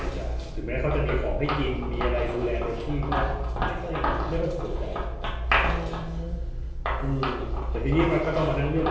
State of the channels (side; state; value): both; identical; correlation 1.00